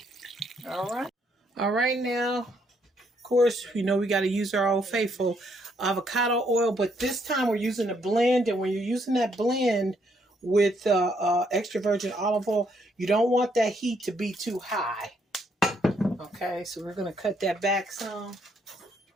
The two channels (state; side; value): normal; both; correlation 0.72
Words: All right now, of course, you know we got to use our old faithful avocado oil, but this time we're using a blend, and when you're using that blend with extra virgin olive oil, you don't want that heat to be too high. Okay, so we're going to cut that back some.